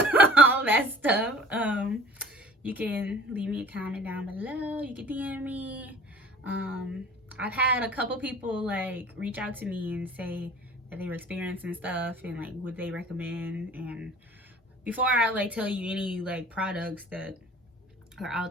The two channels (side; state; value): both; normal; correlation 0.48